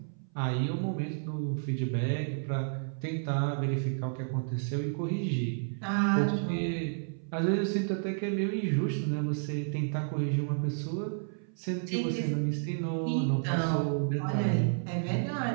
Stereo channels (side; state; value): left; silent; 56 dB below the other